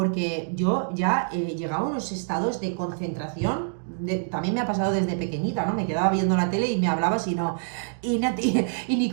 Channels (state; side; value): silent; left; digital silence